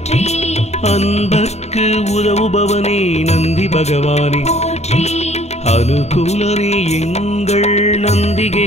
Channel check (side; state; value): right; late; 0.32 ms